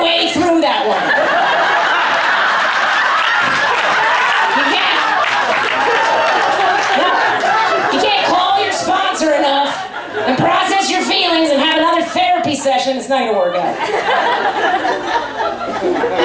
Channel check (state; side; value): identical; both; correlation 1.00